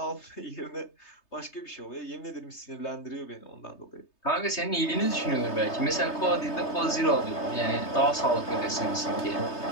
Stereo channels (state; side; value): late; right; 3.3 ms